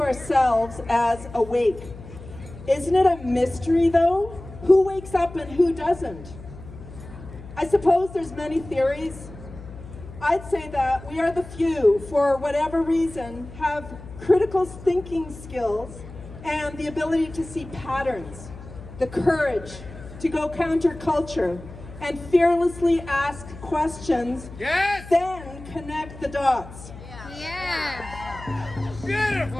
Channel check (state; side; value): noise; left; hum, 15 dB below the sound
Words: ourselves as awake. Isn't it a mystery, though? Who wakes up and who doesn't? I suppose there's many theories. I'd say that we are the few, for whatever reason, have critical thinking skills and the ability to see patterns, the courage to go counterculture and fearlessly ask questions, Yes! then connect the dots. Yeah.